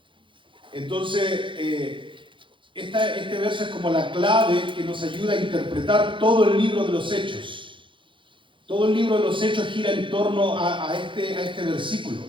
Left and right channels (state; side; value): late; left; 0.24 ms